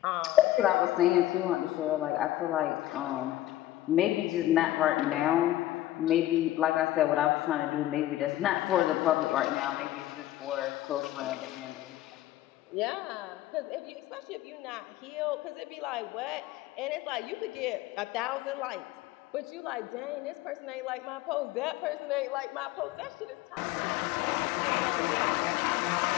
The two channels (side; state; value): right; quieter; 14.6 dB